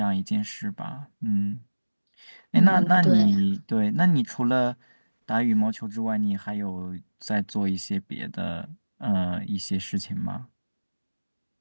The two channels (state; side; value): inverted; both; correlation -1.00